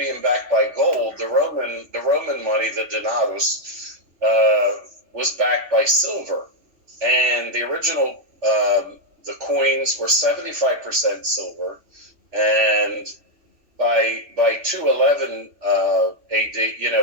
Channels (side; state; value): left; late; 3.0 ms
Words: backed by gold, the Roman money, the denarius, was backed by silver, and the original the coins were 75% silver, and by 211 AD,